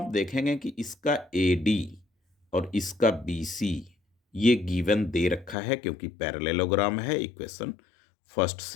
देखेंगे कि इसका ए डी और इसका बी सी ये गिवन दे रखा है क्योंकि पैरेललोग्राम है। इक्वेशन फर्स्ट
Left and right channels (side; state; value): right; drops out; at 5.6 s